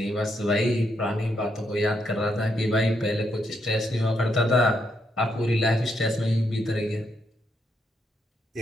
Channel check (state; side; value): normal; both; correlation 0.78